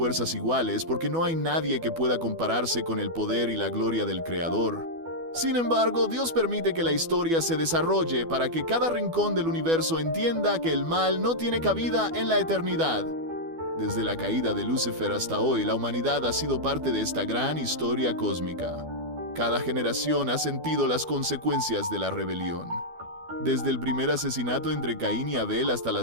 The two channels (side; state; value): left; late; 12 ms